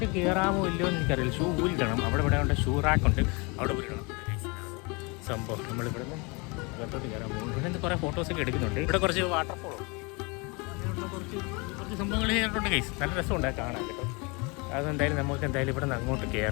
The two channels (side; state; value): right; quieter; 29.0 dB